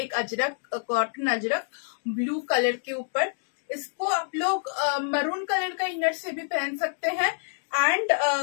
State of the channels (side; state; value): right; silent; digital silence